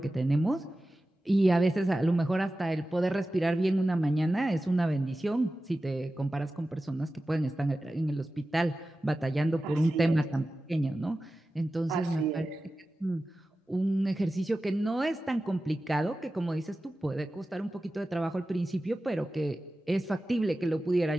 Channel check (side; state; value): both; normal; correlation 0.94